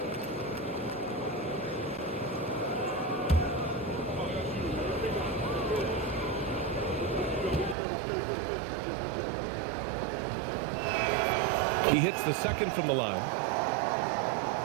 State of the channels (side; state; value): left; drops out; at 7.8 s